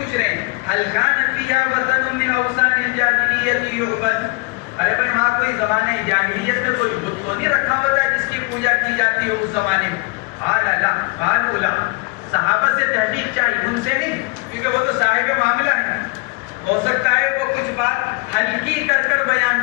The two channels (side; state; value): right; quieter; 28.2 dB